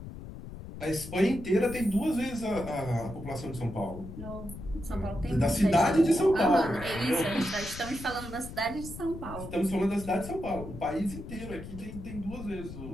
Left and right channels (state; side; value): noise; left; rumble, 11 dB below the sound